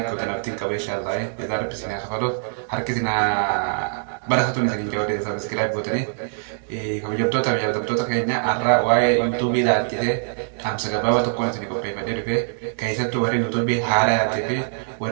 بوتن أبتين كبا إن شاء الله إذا رب سني خلاص harkisina barakatu ni sakin jawde subscribe button kamu jabdota jabdota kayaknya arra wae youtube da tite am saga baba to kona tini ko pe bade pe kaisa to wari youtube hara tite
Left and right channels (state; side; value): silent; left; digital silence